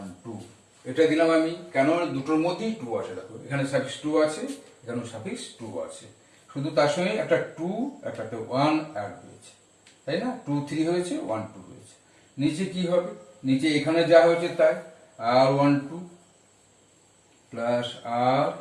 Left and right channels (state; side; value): identical; both; correlation 1.00